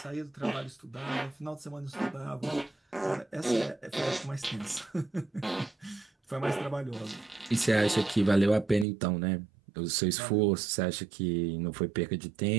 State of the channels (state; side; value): drops out; left; at 8.8 s